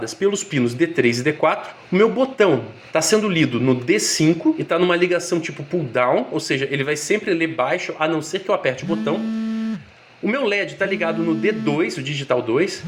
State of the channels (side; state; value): both; identical; correlation 1.00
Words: pelos pinos D3 e D4. O meu botão está sendo lido no D5 e está numa ligação tipo pull down, ou seja, ele vai sempre ler baixo, a não ser que eu aperte o botão. O meu LED está ligado no D2, o digital 2,